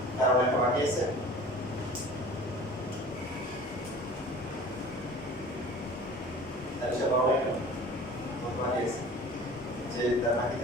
কারণ একটা বাকি আছে তাহলে সে বড় একটা বাকি আছে যে তার বাকি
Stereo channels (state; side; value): normal; both; correlation 0.42